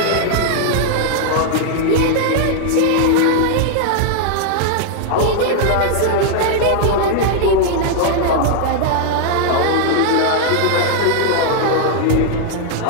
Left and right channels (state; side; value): different; both; correlation 0.00